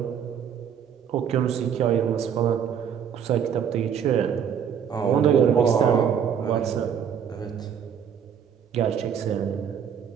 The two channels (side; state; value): left; quieter; 8.1 dB